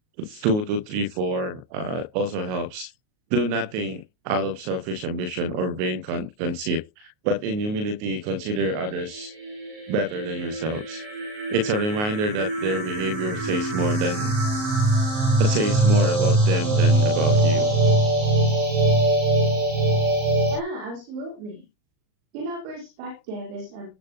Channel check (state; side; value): late; left; 38 ms